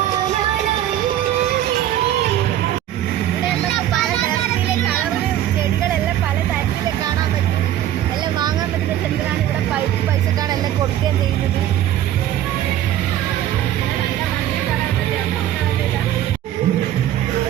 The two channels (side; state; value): left; quieter; 12.1 dB